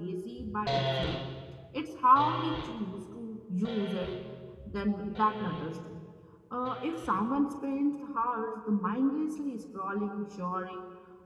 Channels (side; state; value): both; identical; correlation 1.00